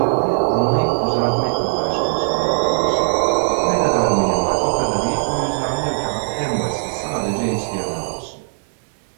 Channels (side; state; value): left; silent; 65 dB below the other